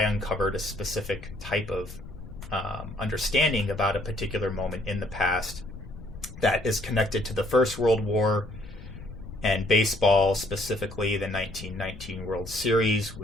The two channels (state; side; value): noise; left; rumble, 14 dB below the sound